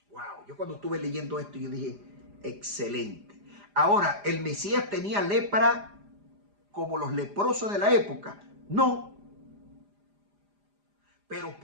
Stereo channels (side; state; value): left; late; 4.9 ms